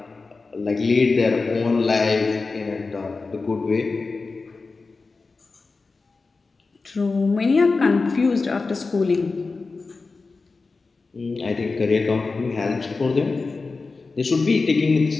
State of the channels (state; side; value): quieter; right; 4.0 dB